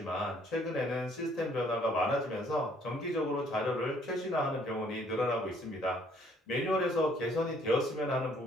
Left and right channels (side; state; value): both; normal; correlation 0.63